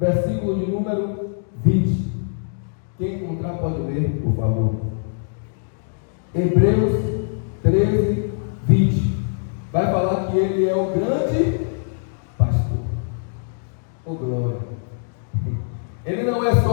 de número 20. Quem encontrar pode ler, por favor. Hebreus 13, 20. Vai falar que ele é o grande pastor. Oh, glória! Ele não é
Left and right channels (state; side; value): silent; right; digital silence